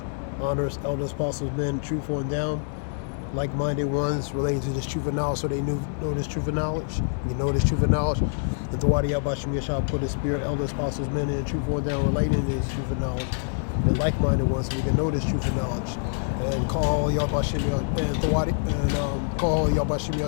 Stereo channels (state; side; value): silent; right; digital silence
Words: Honors, elders, apostles, men, truthful and down, like-minded ones relating to this truth of knowledge, so they know this truth of knowledge. You know this truth of knowledge. That the Wadi Yahweh Shem Yahweh put his spirit, elders, apostles, men, and truthful and down, relating to this truth of knowledge. And like-minded ones, so we can know this truth of knowledge. And call Yahweh Shem and the Wadi and call Yahweh Shem